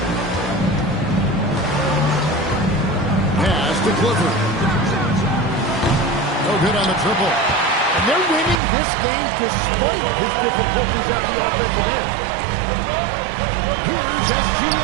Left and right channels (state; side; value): drops out; left; at 8.6 s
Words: Pass to Clifford. No good on the triple. And they're winning this game despite his difficulties at the offensive end. Here's